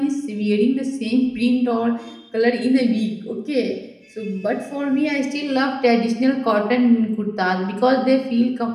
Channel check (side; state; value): both; identical; correlation 1.00